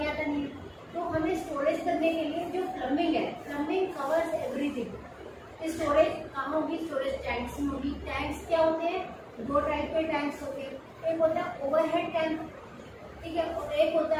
आता नहीं है, तो हमें स्टोरेज करने के लिए जो प्लम्बिंग है, प्लम्बिंग कवर्स एवरीथिंग। स्टोरेज कहाँ होगी, स्टोरेज टैंक्स में होगी। टैंक्स क्या होते हैं, दो टाइप के टैंक्स होते हैं, एक होता है ओवरहेड टैंक, ठीक है, और एक होता है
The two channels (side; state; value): both; identical; correlation 1.00